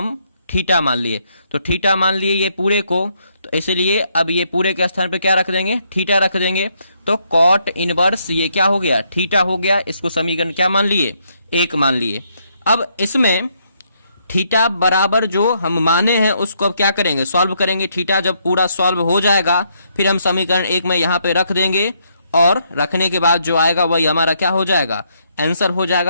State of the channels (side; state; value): both; inverted; correlation -0.74